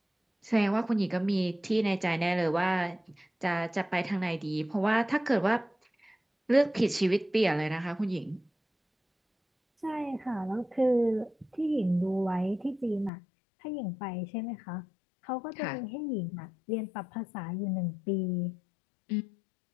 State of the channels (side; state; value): right; drops out; at 13.1 s